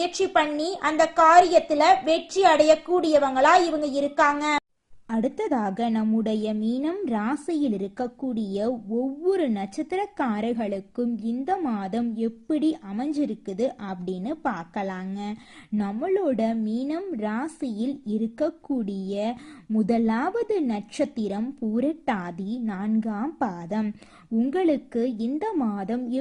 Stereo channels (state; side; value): identical; both; correlation 1.00